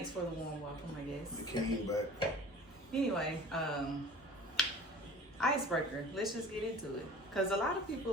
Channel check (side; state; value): both; normal; correlation 0.42